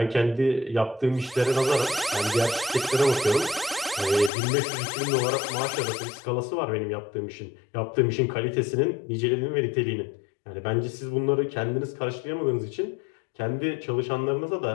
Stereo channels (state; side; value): drops out; right; at 4.3 s